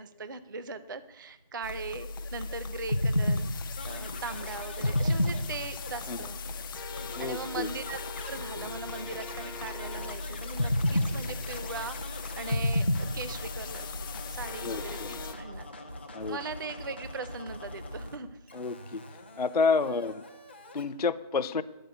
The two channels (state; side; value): inverted; both; correlation -0.41